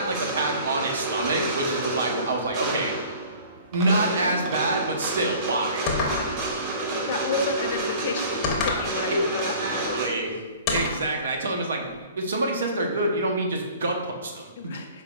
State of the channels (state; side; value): inverted; both; correlation -0.47